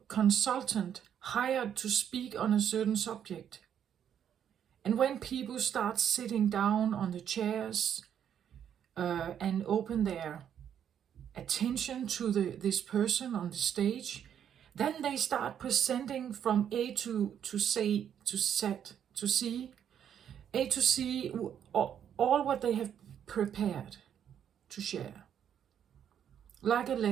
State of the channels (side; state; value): left; quieter; 9.1 dB